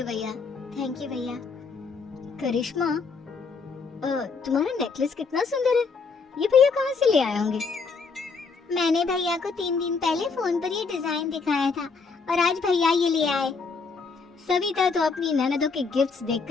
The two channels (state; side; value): quieter; right; 4.7 dB